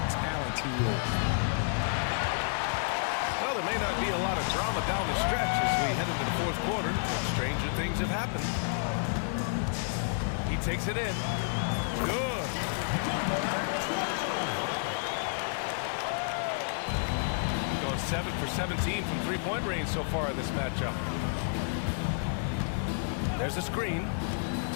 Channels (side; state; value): right; silent; digital silence